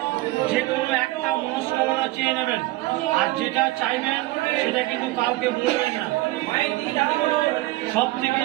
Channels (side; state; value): left; quieter; 18.8 dB